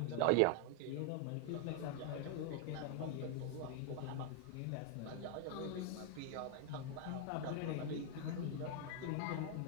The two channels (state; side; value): different; both; correlation 0.01